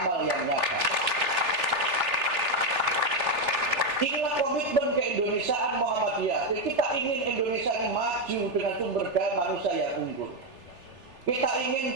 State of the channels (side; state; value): left; late; 3.4 ms